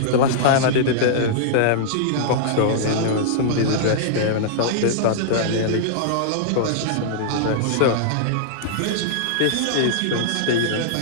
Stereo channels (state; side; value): different; both; correlation -0.02